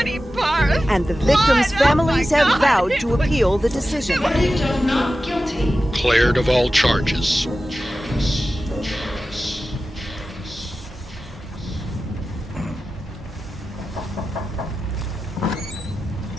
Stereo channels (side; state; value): both; normal; correlation 0.94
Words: parts. And the victims' blood. families Oh my have God. vowed to appeal the decision. Not guilty. Cleared of all charges.